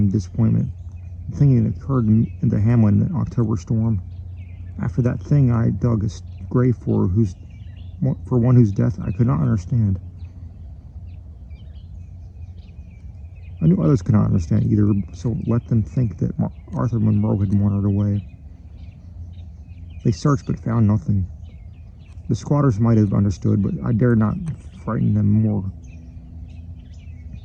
disappointment, the thing that occurred in the hamlet in the October storm. After that thing, I dug a grave for one whose death I could not understand. I knew others could not understand either, so let them think that Arthur Monroe had wandered away. They searched but found nothing. The squatters might have understood, but I dared not frighten them more.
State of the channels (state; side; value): identical; both; correlation 1.00